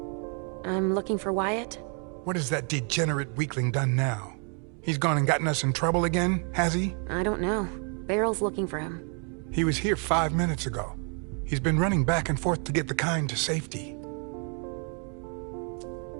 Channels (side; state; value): left; quieter; 39.3 dB